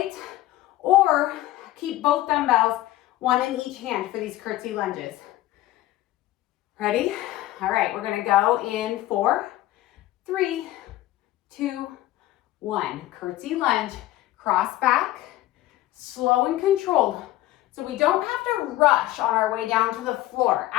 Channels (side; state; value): right; quieter; 15.6 dB